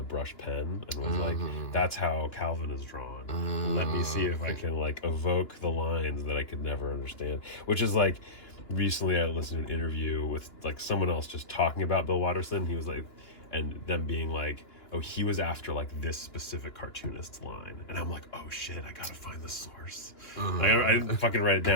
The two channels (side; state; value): right; late; 2.9 ms